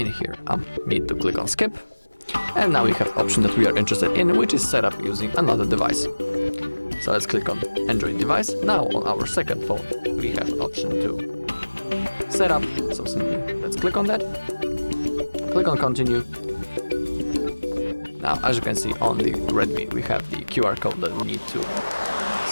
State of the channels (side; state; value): both; inverted; correlation -1.00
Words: here, need to click on skip. And now we have option that we are interested in, which is set up using another device. So let's click on Android device. Now on our second phone, we have option to set up. So simply let's click on that. Click on continue. Now, as you can see on the Redmi, we have the QR code that we need to